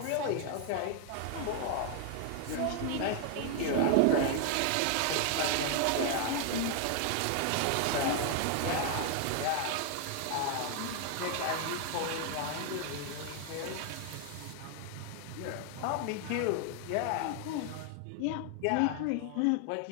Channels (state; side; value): different; both; correlation 0.00